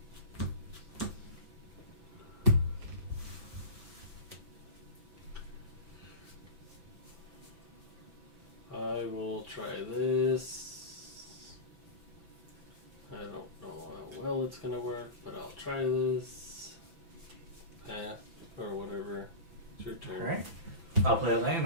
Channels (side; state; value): left; late; 6.0 ms